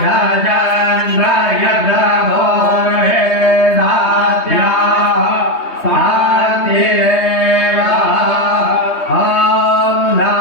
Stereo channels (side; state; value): right; late; 3.2 ms